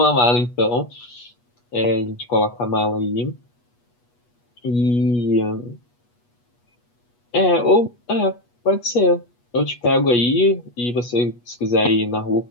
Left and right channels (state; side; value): late; right; 8.3 ms